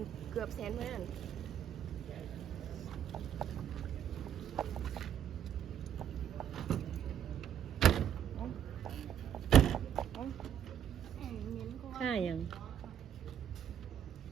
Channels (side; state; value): left; quieter; 9.6 dB